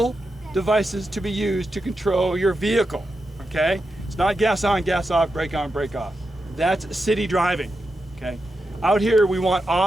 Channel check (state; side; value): normal; both; correlation 0.88